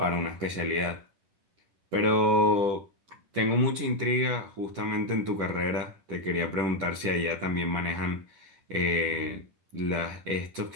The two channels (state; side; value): late; left; 10 ms